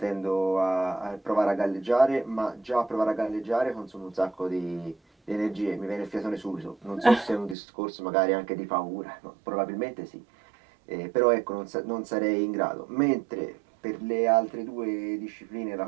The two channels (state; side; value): drops out; left; at 7.6 s